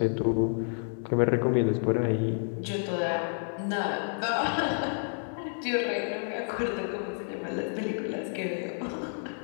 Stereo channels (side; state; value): right; silent; 58 dB below the other